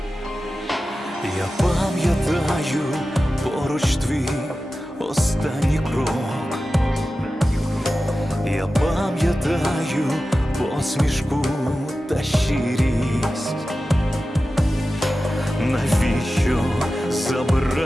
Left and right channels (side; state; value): both; normal; correlation 0.94